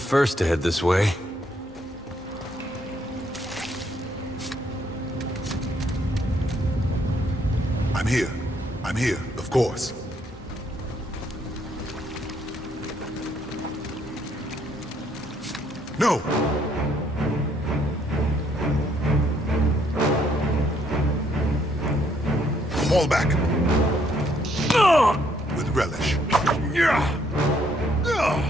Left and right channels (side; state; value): both; normal; correlation 0.69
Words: to head this way. I'm here. I'm here, of course. No! Fall back. With relish.